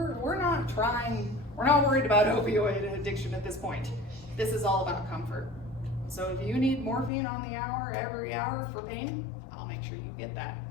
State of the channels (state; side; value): drops out; right; at 7.1 s